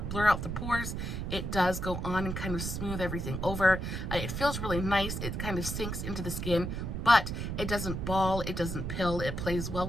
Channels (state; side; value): noise; right; rumble, 4 dB below the sound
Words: out the pores. It does go on and kind of smooth everything over. It feels really nice. It kind of sinks into the skin, but it doesn't ball, it doesn't pill, it plays well